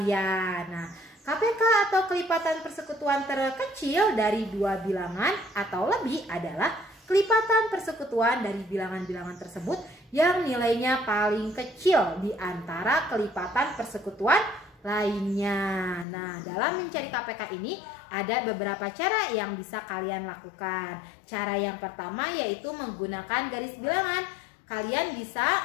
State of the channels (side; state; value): right; drops out; at 16.1 s